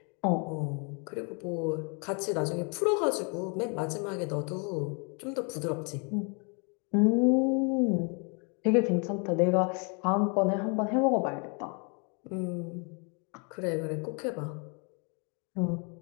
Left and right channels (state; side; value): quieter; right; 35.3 dB